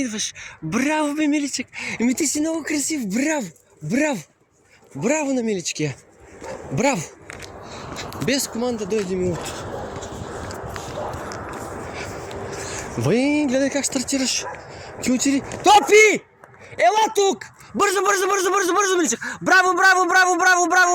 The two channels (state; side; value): identical; both; correlation 1.00